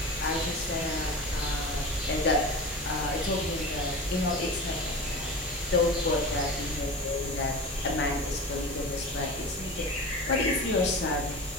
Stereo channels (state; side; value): normal; both; correlation 0.31